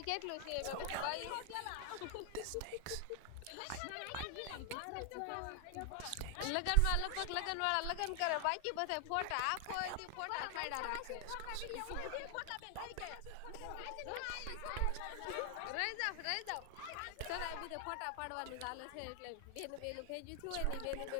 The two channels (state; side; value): different; both; correlation 0.00